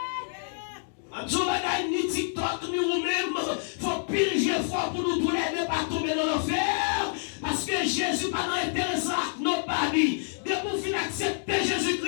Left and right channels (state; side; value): silent; right; digital silence